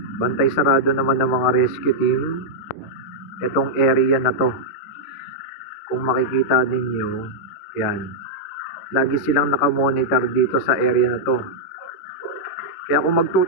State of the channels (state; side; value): late; right; 10 ms